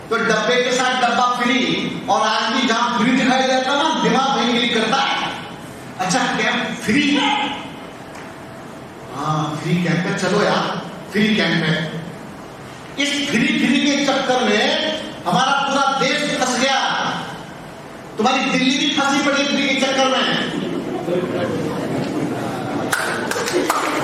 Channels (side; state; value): both; identical; correlation 1.00